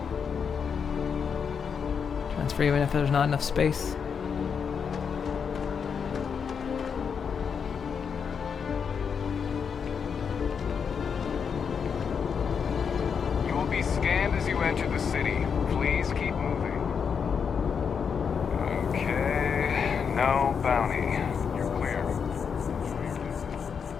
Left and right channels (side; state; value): right; quieter; 6.6 dB